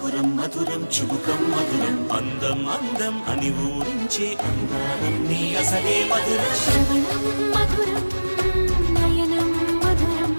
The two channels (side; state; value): both; inverted; correlation -1.00